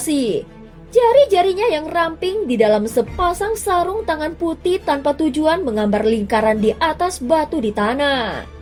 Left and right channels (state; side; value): identical; both; correlation 1.00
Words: Jari-jarinya yang ramping di dalam sepasang sarung tangan putih tanpa tujuan menggambar lingkaran di atas batu di tanah.